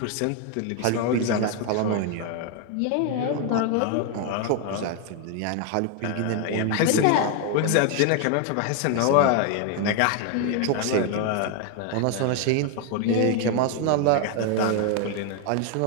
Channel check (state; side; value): different; both; correlation 0.01